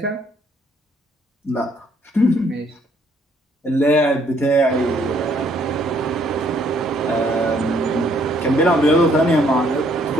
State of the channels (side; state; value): both; normal; correlation 0.66